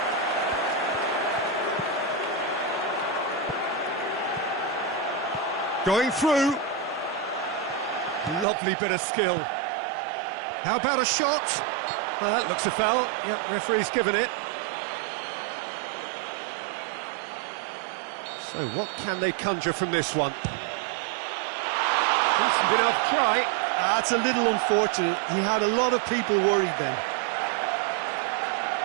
Going through. Lovely bit of skill. How about a shot? Well, that looks a foul. Yep, referee's given it. So what can they conjure from this one? Decent enough try. That's a little unfortunate. He had a lot of people worried then.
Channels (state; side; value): drops out; left; at 8.5 s